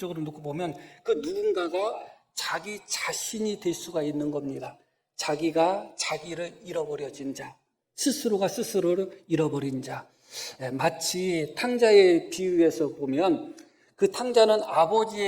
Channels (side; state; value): both; identical; correlation 1.00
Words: 놓고 보면 그 누군가가 자기 자신이 될 수가 있는 겁니다. 자기가 자기를 잃어버려진 자, 스스로가 스스로를 잃어버린 자. 마치 탕자의 비유에서 보면 그 탕자는